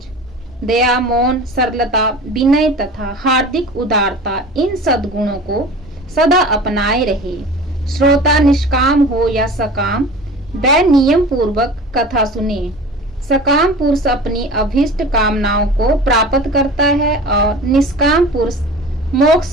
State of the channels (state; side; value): normal; both; correlation 0.38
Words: दया, मौन, सरलता, विनय तथा हार्दिक उदारता, इन सद्गुणों को सदा अपनाए रहे। श्रोता निष्काम हो या सकाम, वह नियम पूर्वक कथा सुने। सकाम पुरुष अपनी अभीष्ट कामनाओं को प्राप्त करता है और निष्काम पुरुष